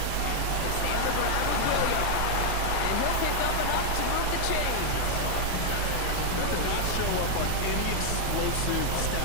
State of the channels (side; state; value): both; different; correlation 0.00